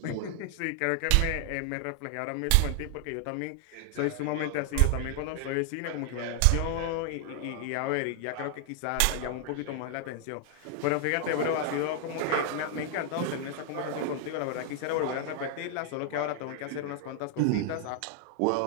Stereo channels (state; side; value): different; both; correlation 0.00